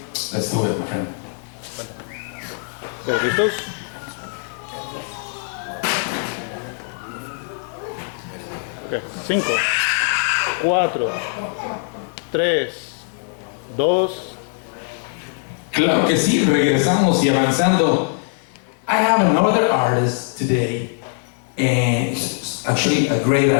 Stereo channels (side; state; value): right; silent; 60 dB below the other